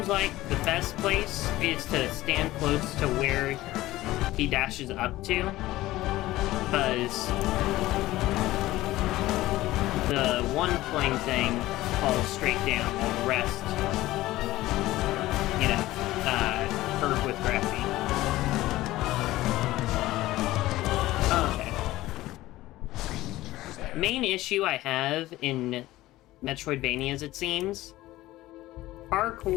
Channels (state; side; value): quieter; right; 16.8 dB